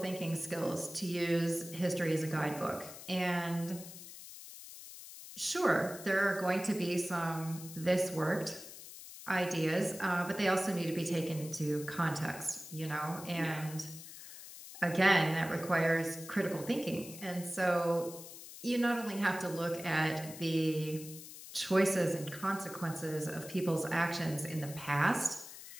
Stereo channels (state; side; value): noise; left; hiss, 14 dB below the sound